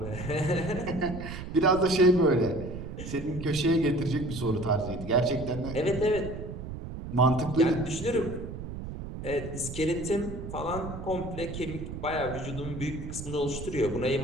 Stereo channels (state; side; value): noise; right; rumble, 8 dB below the sound